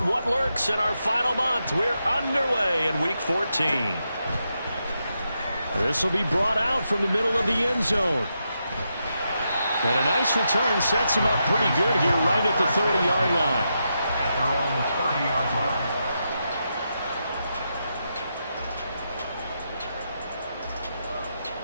What lurks in our final month? We're underway in Week 14. This will be brought out from the middle of the end zone. And a nice return sets him up pretty good here right at the 30-yard line. At their own 30-yard line.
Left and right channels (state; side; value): inverted; both; correlation -0.85